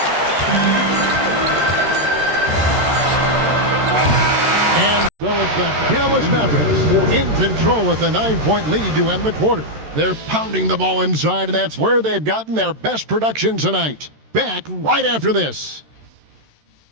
And so it's the Dallas Mavericks in control with a 9-point lead to end the quarter. They're pounding the ball inside, and that's where they've gotten their best production tonight. Back right after this.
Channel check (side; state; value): left; late; 13 ms